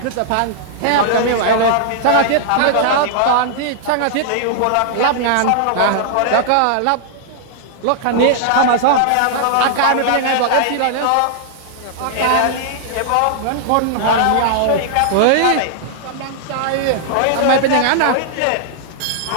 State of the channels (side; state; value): both; different; correlation -0.01